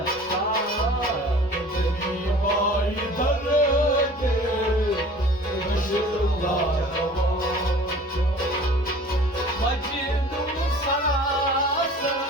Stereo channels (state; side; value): normal; both; correlation 0.45